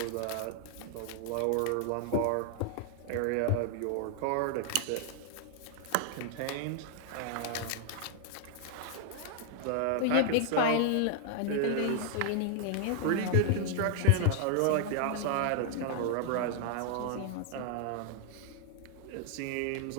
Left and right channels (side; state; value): both; different; correlation 0.00